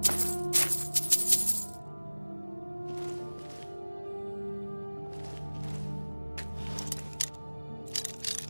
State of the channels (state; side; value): inverted; both; correlation -1.00